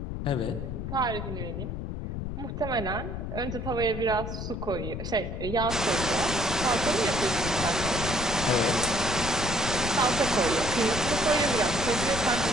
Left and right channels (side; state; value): left; noise; rumble, 5 dB below the sound